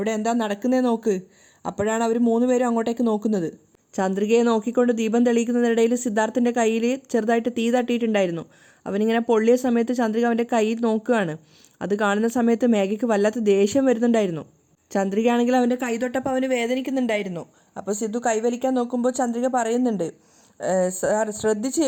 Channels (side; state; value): both; identical; correlation 1.00